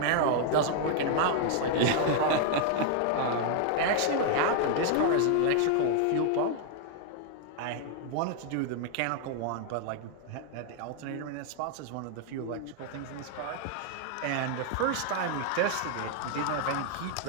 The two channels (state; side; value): different; both; correlation 0.00